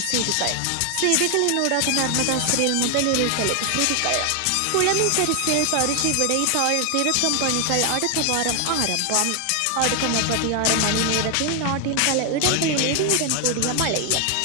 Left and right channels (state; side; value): different; both; correlation 0.00